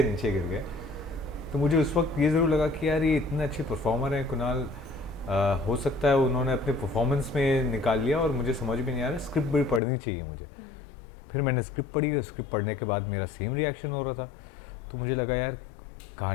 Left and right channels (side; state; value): right; drops out; at 9.8 s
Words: नीचे गिर गए। तो मुझे उस वक्त ये ज़रूर लगा कि यार ये इतने अच्छे परफॉर्मर हैं कुणाल। हो सकता है उन्होंने अपने परफॉर्मेंस में निकाल लिया और मुझे समझ भी नहीं आ रहा, स्क्रिप्ट भी पढ़नी चाहिए मुझे। फिर मैंने स्क्रिप्ट पढ़ी और स्क्रिप्ट पढ़ने के बाद मेरा सेम रिएक्शन हो रहा था। तो मुझे लगा यार